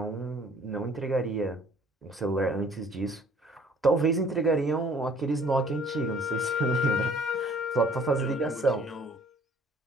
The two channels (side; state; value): both; normal; correlation 0.56